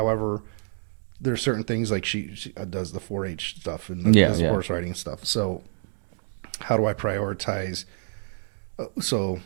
there are certain things like she does the 4-H stuff and the horse riding stuff. So how do I prioritize? So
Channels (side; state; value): left; silent; digital silence